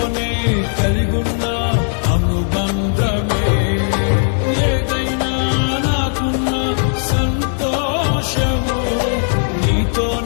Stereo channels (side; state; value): right; silent; 68 dB below the other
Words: కలిగున్న అనుబంధమే ఏదైనా నాకున్న సంతోషము